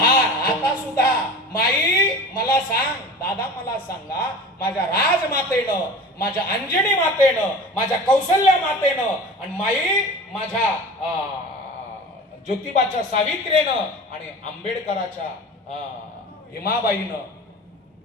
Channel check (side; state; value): both; normal; correlation 0.37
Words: आता सुद्धा माई मला सांग, दादा मला सांगा, माझ्या राजमातेनं, माझ्या अंजनी मातेनं, माझ्या कौशल्या मातेनं, आणि माई माझ्या ज्योतिबाच्या सावित्रीनं आणि आंबेडकराच्या भीमाबाईनं